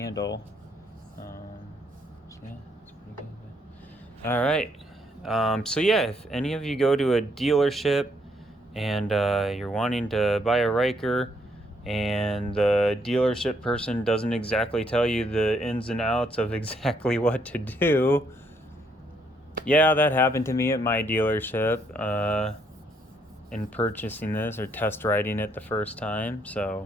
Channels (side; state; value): both; normal; correlation 0.71